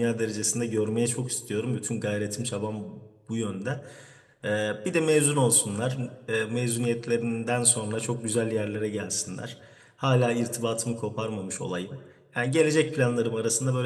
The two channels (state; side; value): identical; both; correlation 1.00